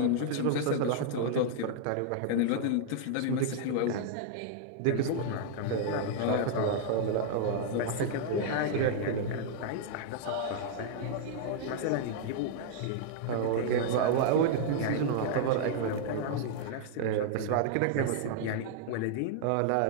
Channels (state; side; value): different; both; correlation -0.01